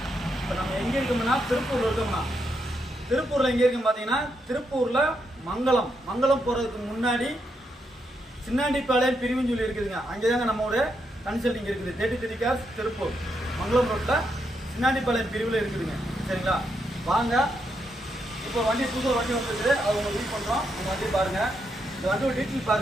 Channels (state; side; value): normal; both; correlation 0.80